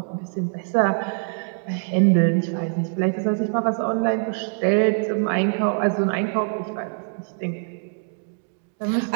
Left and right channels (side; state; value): left; silent; digital silence